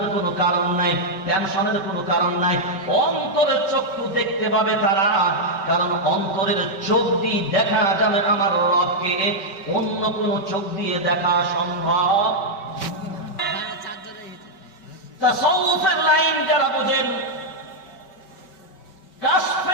কোনো কারণ নাই টেনশনের কোনো কারণ নাই অন্তরের চক্ষু দেখতে পাবে তারা কারণ অন্তরের চোখ দিয়ে দেখা যাবে আমার রবকে অন্য কোনো চোখ দিয়ে দেখা সম্ভব তাসাউফের লাইন যারা বোঝেন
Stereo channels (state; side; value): late; right; 5.2 ms